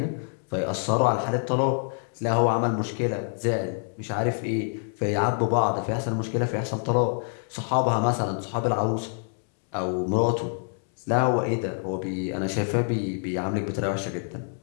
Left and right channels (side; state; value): right; silent; 61 dB below the other